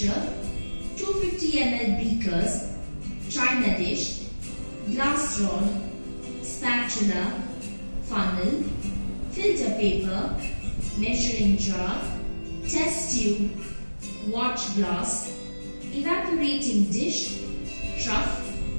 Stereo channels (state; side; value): inverted; both; correlation -1.00